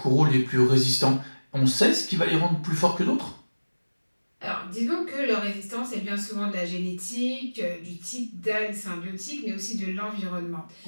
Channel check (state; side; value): inverted; both; correlation -1.00